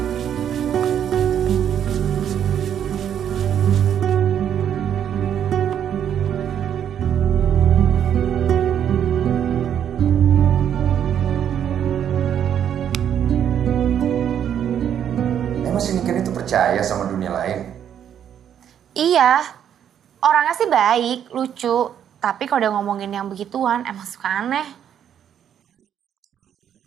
Emang si Niken itu percaya sama dunia lain? Iya, orangnya sih baik, lucu. Tapi kalau udah ngomongin yang begituan, emang suka aneh.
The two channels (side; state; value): left; quieter; 9.3 dB